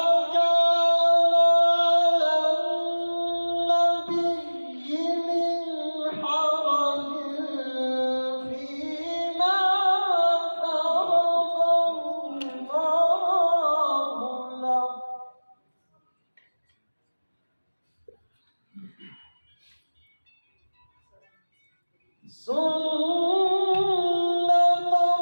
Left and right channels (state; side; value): inverted; both; correlation -1.00